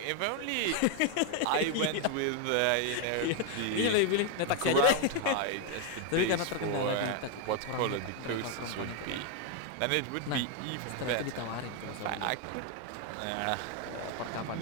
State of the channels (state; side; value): different; both; correlation 0.01